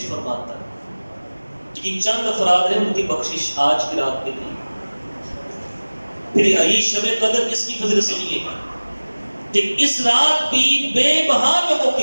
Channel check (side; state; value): both; inverted; correlation -1.00